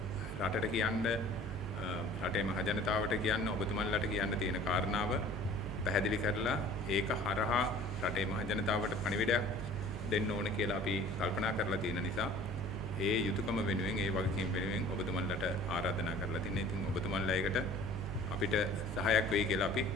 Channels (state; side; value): normal; both; correlation 0.47